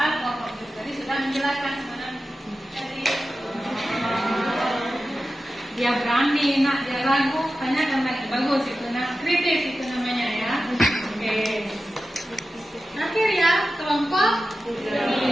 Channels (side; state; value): both; normal; correlation 0.93